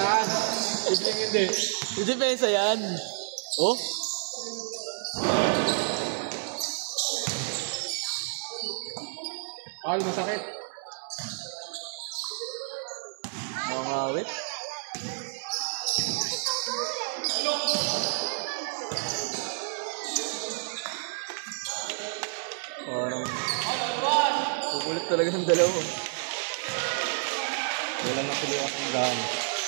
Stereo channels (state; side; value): silent; left; 58 dB below the other